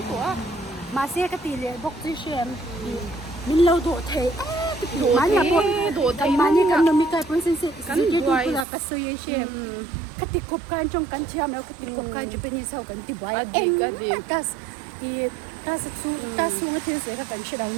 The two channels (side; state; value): left; drops out; at 8.7 s